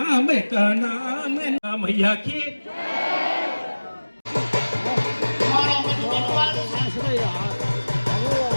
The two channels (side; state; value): both; inverted; correlation -1.00